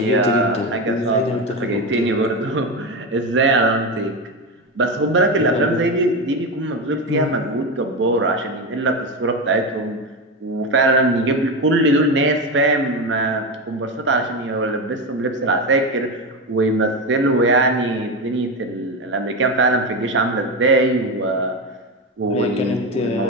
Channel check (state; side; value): normal; both; correlation 0.17